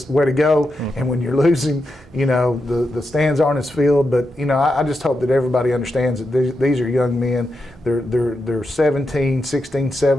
way to go. And when you're losing, the stands aren't as filled. But, I just hope that everybody understands that these are young men. They're 17, 16,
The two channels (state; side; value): normal; both; correlation 0.86